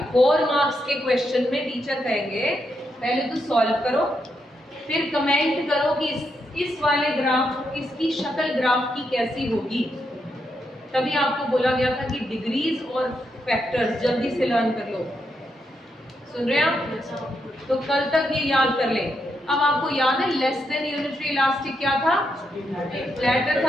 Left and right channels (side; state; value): both; normal; correlation 0.81